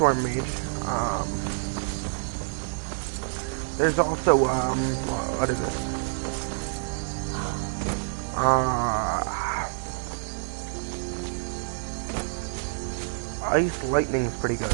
Mage. There's also, what is it? Ice Lightning's pretty good.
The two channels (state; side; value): silent; left; digital silence